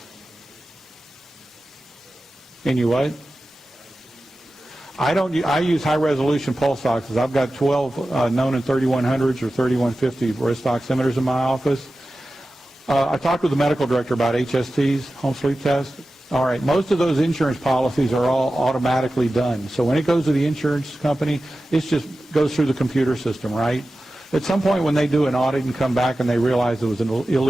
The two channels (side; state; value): both; normal; correlation 0.94